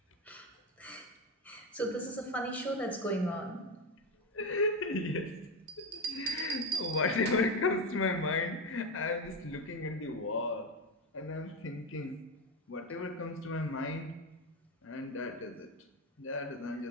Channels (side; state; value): both; normal; correlation 0.14